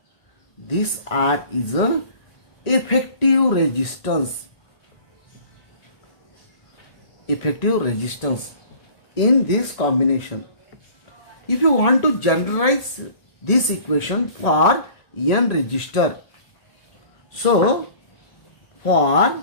This R is a effective resistance. Effective resistance in this combination. If you want to generalize this equation for n resistor, so for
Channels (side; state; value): right; late; 1.8 ms